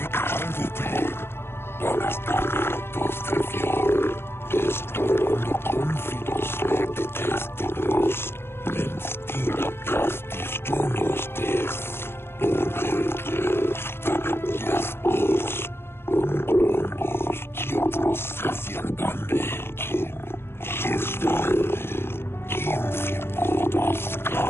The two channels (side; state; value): right; late; 0.11 ms